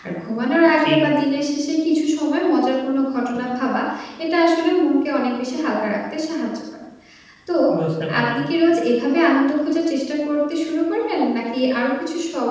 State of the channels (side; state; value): both; identical; correlation 1.00